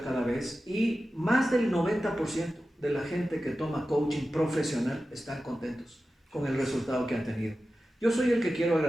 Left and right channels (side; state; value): both; normal; correlation 0.94